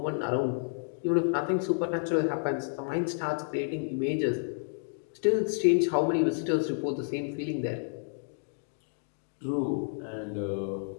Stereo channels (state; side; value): silent; right; digital silence